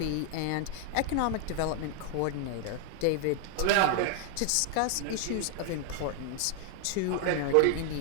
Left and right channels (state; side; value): different; both; correlation 0.00